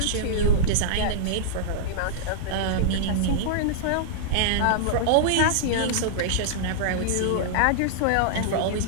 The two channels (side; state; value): both; different; correlation -0.02